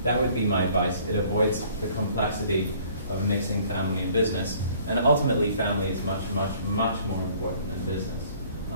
that would be my advice. It avoids the complexity of mixing family and business. And ultimately, family is much, much, much more important than business.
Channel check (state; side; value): inverted; both; correlation -0.56